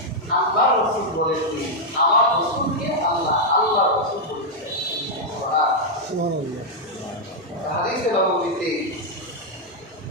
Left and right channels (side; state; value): both; normal; correlation -0.03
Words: আল্লাহ রাসূল বলেননি, আমার রাসূলকে আল্লাহ আল্লাহ রাসূল বলেছেন। সুবহানাল্লাহ। হাদিসে নববীতে